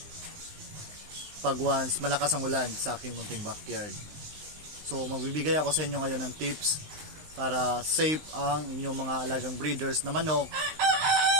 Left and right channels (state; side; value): late; left; 19 ms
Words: pag once malakas ang ulan sa aking munting backyard. So magbibigay ako sa inyo ngayon ng tips para safe ang inyong mga alagang breeders na manok